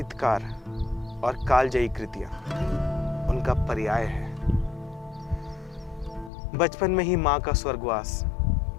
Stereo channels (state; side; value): drops out; right; at 6.3 s